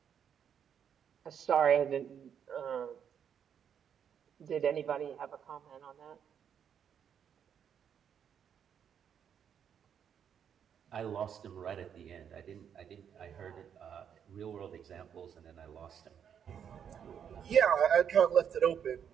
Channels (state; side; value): quieter; left; 8.2 dB